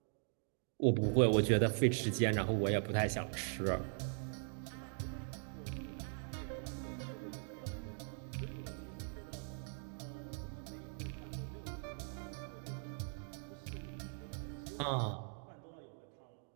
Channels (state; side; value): silent; left; 51 dB below the other